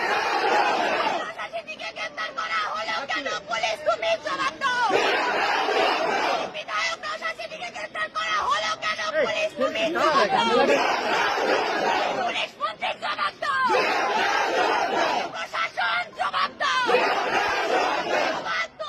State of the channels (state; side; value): identical; both; correlation 1.00